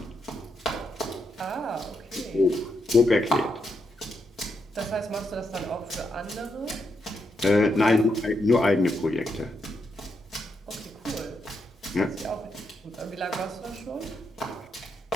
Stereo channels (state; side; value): normal; both; correlation 0.81